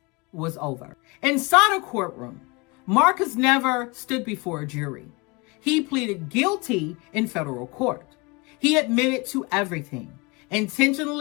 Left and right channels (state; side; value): quieter; right; 26.5 dB